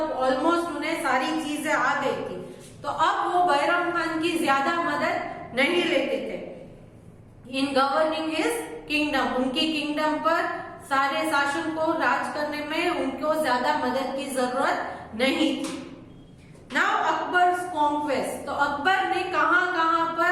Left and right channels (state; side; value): identical; both; correlation 1.00